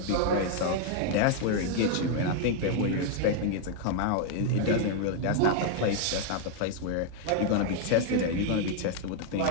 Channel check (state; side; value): different; both; correlation 0.00